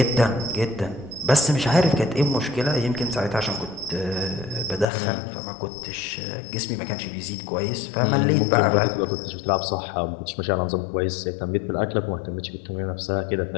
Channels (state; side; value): drops out; right; at 4.9 s